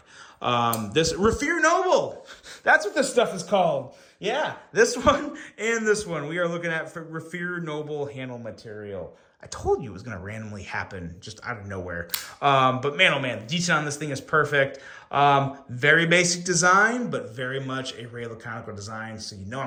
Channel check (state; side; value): identical; both; correlation 1.00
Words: This Rafir Noble, that's what this stuff is called. Yeah, this one and this one. We are looking at Rafir Noble handle material. I told you it was going to randomly happen just out of nowhere. But man, oh man, the detail on this thing is perfect. Very basic design, but very much a Ray Laconico design, so you know